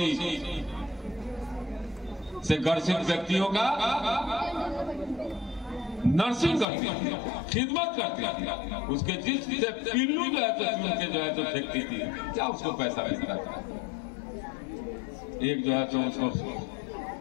से ग्रसित व्यक्तियों का नर्सिंग करती थी, खिदमत करती थी, उसके जिस्म से पिल्लू जो है तो चुन के जो है तो फेंकती थी, क्या उसको पैसा मिलता था? एक जो है तो उसको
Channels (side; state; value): right; drops out; at 6.7 s